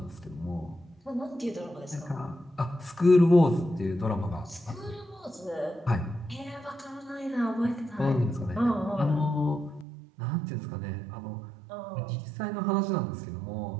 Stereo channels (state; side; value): drops out; left; at 9.9 s